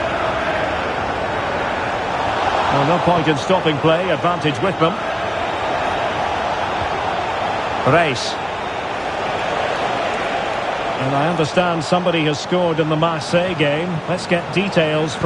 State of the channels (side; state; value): both; identical; correlation 1.00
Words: Well, no point in stopping play. Advantage with them. Reis. And I understand somebody has scored in the Marseille game. Let's get details